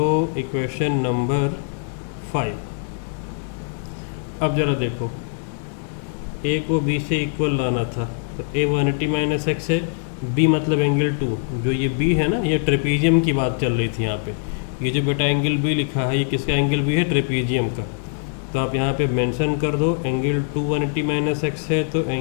इक्वेशन नंबर 5। अब ज़रा देखो, ए को बी से इक्वल लाना था, तो ए 180 माइनस एक्स है, बी मतलब एंगल 2, जो ये बी है ना, ये ट्रेपीजियम की बात चल रही थी यहाँ पे। ये जो बेटा एंगल बी लिखा है, ये किसका एंगल बी है, ट्रेपीजियम का। तो आप यहाँ पे मेंशन कर दो एंगल 2 180 माइनस एक्स है, तो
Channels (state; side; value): silent; right; digital silence